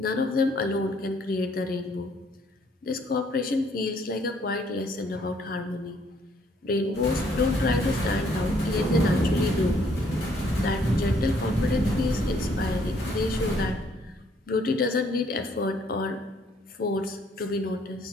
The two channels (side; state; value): both; normal; correlation 0.66